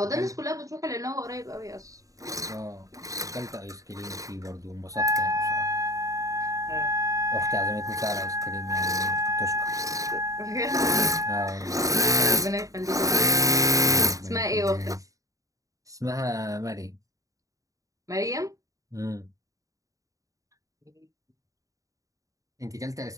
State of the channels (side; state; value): left; late; 0.16 ms